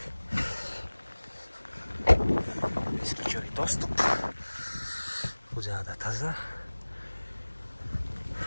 Бескүчөбөй доступ. Бул жагда таза.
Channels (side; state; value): both; inverted; correlation -1.00